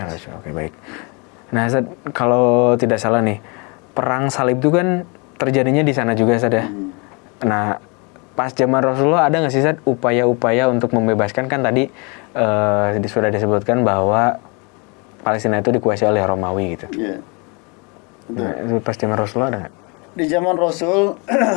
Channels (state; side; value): quieter; right; 31.4 dB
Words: Oke, baik. Nah, Ustaz, kalau tidak salah nih, perang salib itu kan terjadinya di sana juga, Ustaz ya. Nah, pas zaman Rasulullah ada nggak sih, Ustaz, upaya-upaya untuk membebaskan? Kan tadi sudah disebutkan bahwa Palestina itu dikuasai oleh Romawi gitu. Iya. Nah, itu pas zaman Rasulullah ada nggak? Di zaman Rasul,